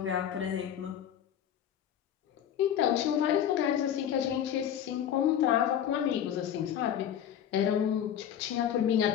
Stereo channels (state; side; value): quieter; right; 9.8 dB